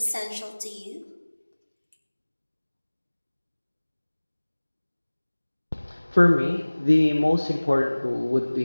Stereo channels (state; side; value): inverted; both; correlation -1.00